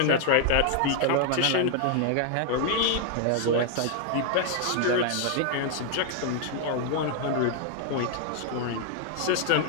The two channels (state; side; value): different; both; correlation 0.00